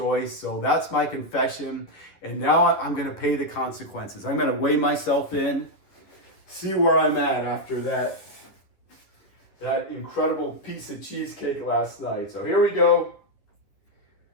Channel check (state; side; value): late; right; 11 ms